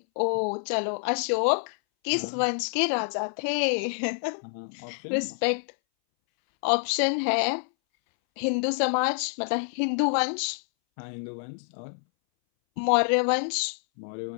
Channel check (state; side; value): silent; right; 60 dB below the other